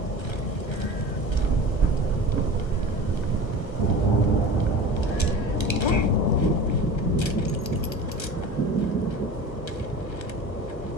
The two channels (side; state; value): right; late; 1.3 ms